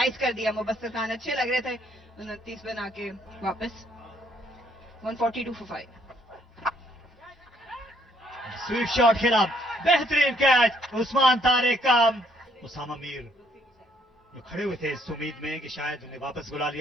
कर दिया. मुबस्सिर खान अच्छे लग रहे थे. 29 बना के वापस. 142 for 5. स्वीप शॉट खेला. बेहतरीन कैच उस्मान तारिक का. उसामा मीर जो खड़े हुए थे इस उम्मीद में कि शायद उन्हें वापस बुला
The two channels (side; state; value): both; normal; correlation 0.68